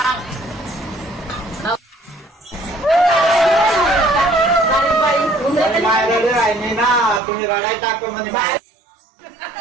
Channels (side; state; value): left; drops out; at 7.2 s